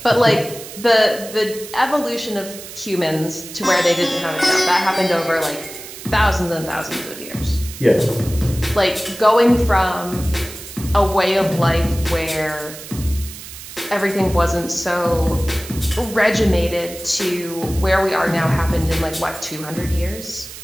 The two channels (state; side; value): noise; right; hiss, 13 dB below the sound